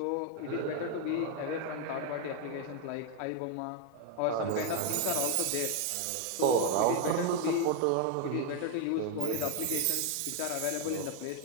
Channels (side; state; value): both; different; correlation 0.01